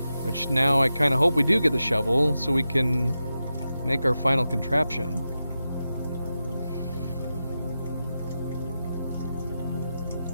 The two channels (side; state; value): both; inverted; correlation -0.91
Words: which now I kind of hope we do get the shovel so we can make our final contraption.